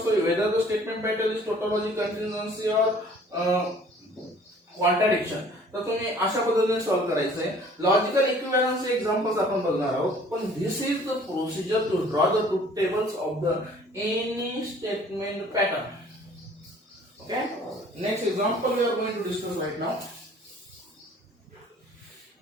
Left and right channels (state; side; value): normal; both; correlation 0.53